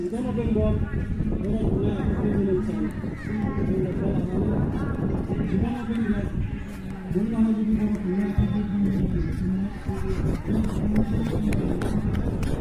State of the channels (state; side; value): identical; both; correlation 1.00